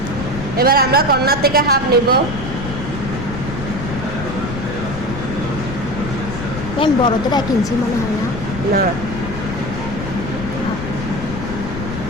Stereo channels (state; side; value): noise; left; rumble, 7 dB below the sound